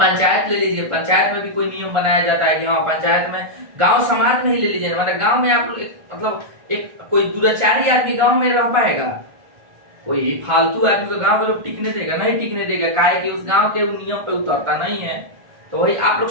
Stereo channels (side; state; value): left; late; 1.4 ms